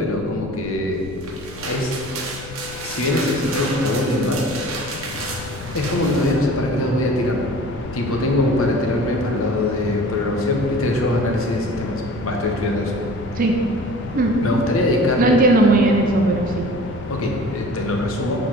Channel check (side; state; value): left; noise; rumble, 15 dB below the sound